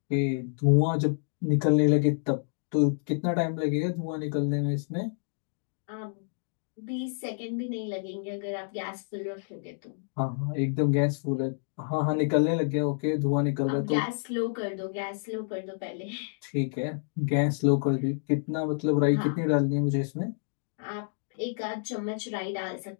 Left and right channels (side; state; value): right; silent; digital silence